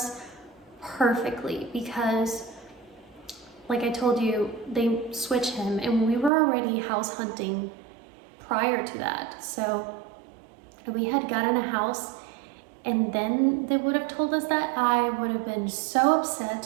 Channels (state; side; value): drops out; left; at 6.3 s